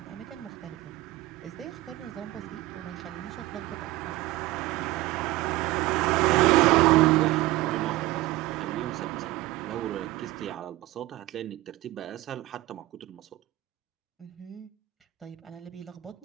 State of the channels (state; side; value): quieter; left; 17.5 dB